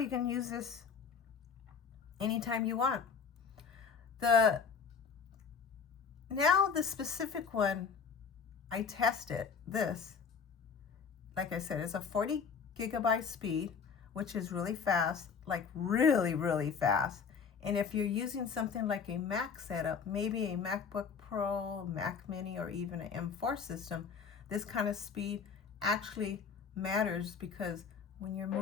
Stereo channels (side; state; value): right; quieter; 6.1 dB